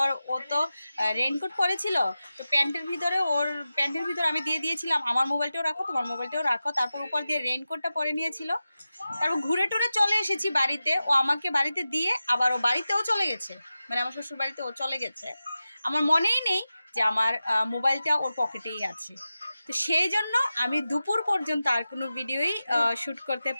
ও তো রেইনকোট পরেছিল, তো প্যান্টের ভিতর আমি দিয়ে দিয়েছিলাম, আমার মোবাইলটাও রাখো, তোমার মোবাইলটাও রাখো। তারপর উপর দিয়ে রেইনকোটটা পরে নিয়েছিল। তারপর ঘুরে টুরে চলে এসেছি বাড়িতে, ও আমাকে বাড়িতে দিয়ে আবার ও বাড়িতেও চলে গেছে, মানে আমার শ্বশুর বাড়িতে ও চলে গেছে। আমার মনেই নেই যে আমার মোবাইলটা ওর পকেটেই আছে। তো সেই জন্য আমি দুপুর পর্যন্ত আর কোনো ভিডিওই শ্যুট করতে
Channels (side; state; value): both; inverted; correlation -0.94